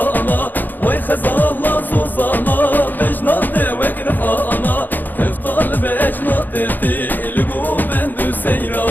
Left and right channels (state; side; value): late; right; 0.087 ms